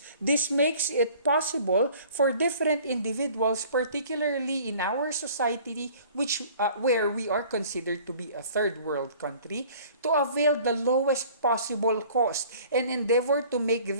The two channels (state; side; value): inverted; both; correlation -0.50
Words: This makes it possible for different individuals, particularly in our society, where we are considered to be a third world country, to avail the lowest possible cost and endeavor to make